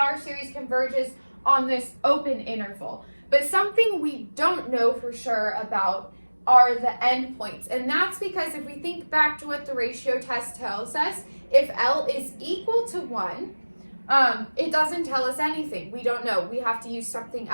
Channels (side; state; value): both; inverted; correlation -1.00